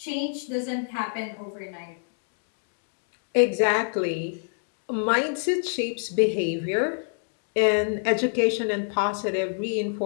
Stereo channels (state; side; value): silent; right; digital silence